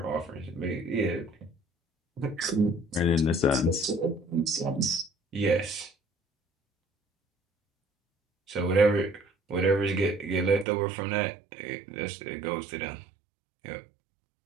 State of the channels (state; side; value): drops out; left; at 10.7 s